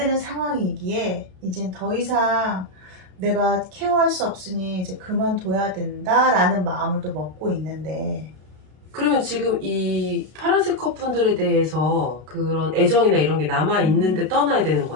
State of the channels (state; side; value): late; left; 33 ms